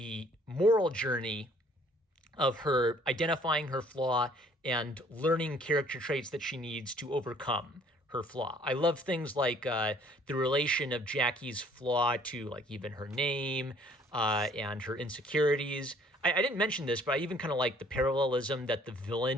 moral journey of her identifying her flaw and learning character traits that she needs to overcome her flaw. I love things like the relation of Jacky's flaw to like even her name and her insecurities. I didn't mention this, but I even kind of like the parallelism that the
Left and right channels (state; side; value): normal; both; correlation 0.58